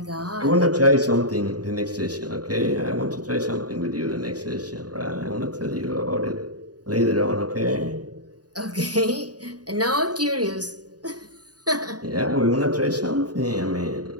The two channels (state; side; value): late; left; 0.68 ms